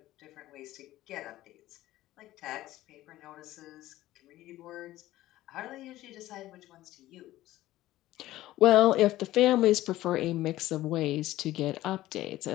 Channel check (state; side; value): quieter; right; 15.6 dB